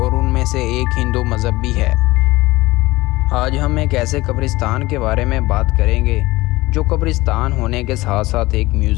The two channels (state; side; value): quieter; right; 19.6 dB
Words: उनमें से एक हिंदू मज़हब भी है। आज हम एक ऐसे कब्रिस्तान के बारे में बात करेंगे जो कब्रिस्तान होने के साथ साथ एक